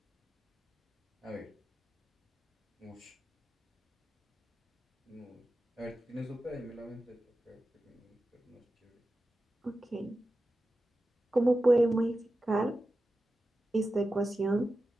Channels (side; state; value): both; normal; correlation 0.93